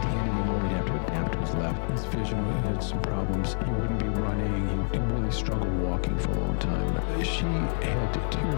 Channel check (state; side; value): silent; right; 60 dB below the other